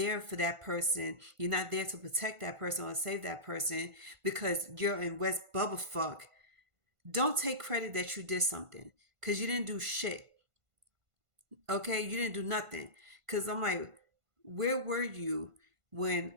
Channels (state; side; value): late; left; 1.5 ms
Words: for that person, you're not there to protect that person or save that person because you're in West Bubble Fuck. Don't take credit that you did something because you didn't do shit. Okay, you didn't do nothing. Because I'm like, where were you when